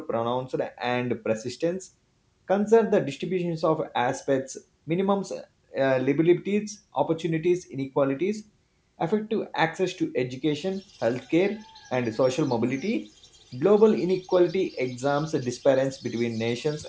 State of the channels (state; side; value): identical; both; correlation 1.00